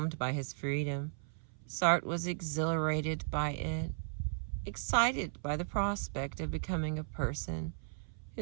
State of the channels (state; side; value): silent; left; 54 dB below the other